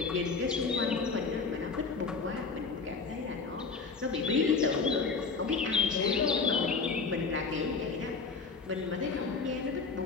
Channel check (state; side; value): quieter; right; 4.6 dB